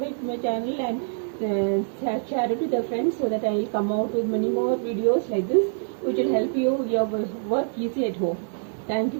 to my channel and share it with your friends, so that I will come out with many more videos like this, which will help your work easy at home. Thank you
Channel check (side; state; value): left; silent; digital silence